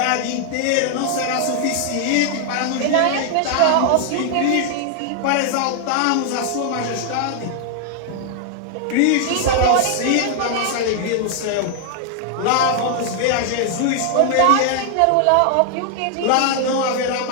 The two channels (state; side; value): different; both; correlation 0.00